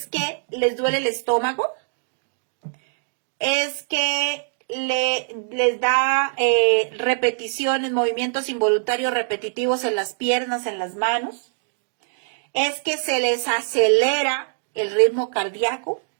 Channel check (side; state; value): left; silent; digital silence